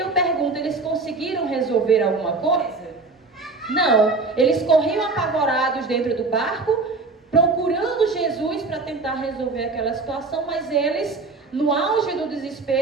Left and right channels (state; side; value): quieter; left; 3.8 dB